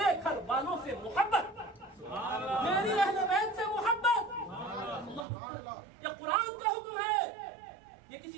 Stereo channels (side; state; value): left; drops out; at 5.2 s